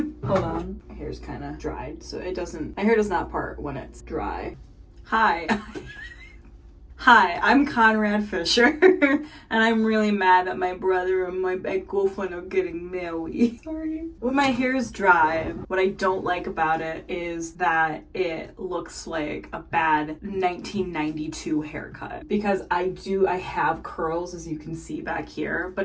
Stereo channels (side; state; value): both; identical; correlation 1.00